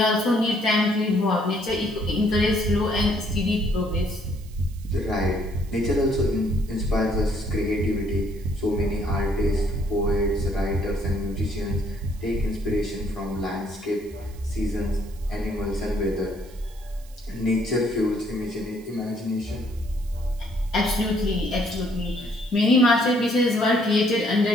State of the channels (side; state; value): right; noise; hiss, 25 dB below the sound